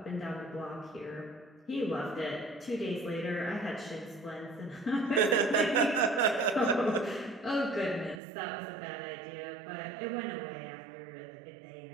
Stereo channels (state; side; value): drops out; left; at 8.2 s